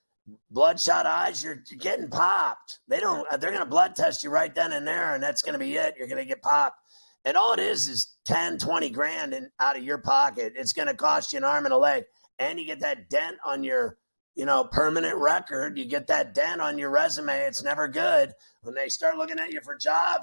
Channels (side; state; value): both; inverted; correlation -1.00